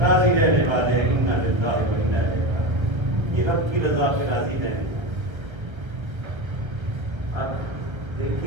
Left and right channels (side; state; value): left; late; 1.5 ms